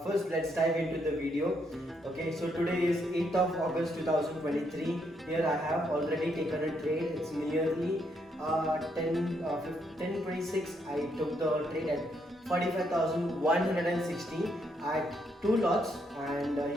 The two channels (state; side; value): normal; both; correlation 0.75